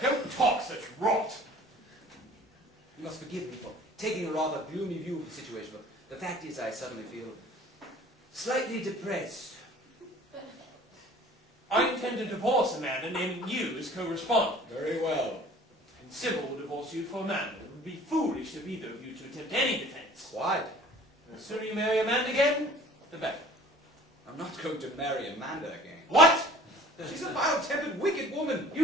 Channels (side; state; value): both; normal; correlation 0.48